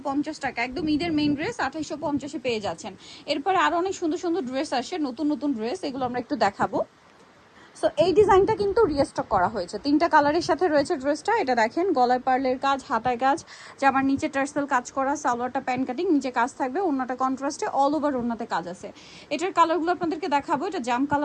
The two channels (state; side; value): identical; both; correlation 1.00